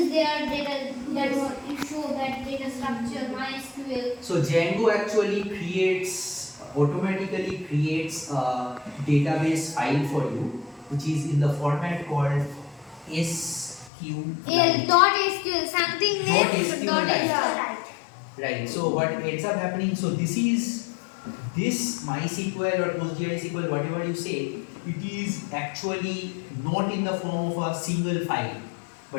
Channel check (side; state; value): right; drops out; at 13.9 s